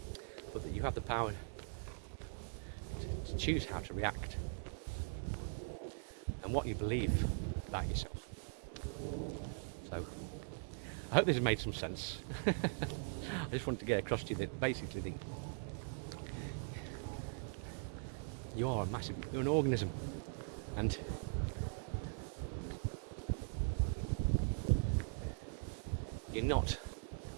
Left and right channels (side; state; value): left; silent; 50 dB below the other